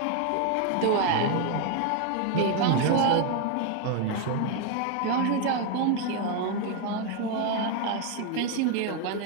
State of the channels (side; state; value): both; different; correlation 0.01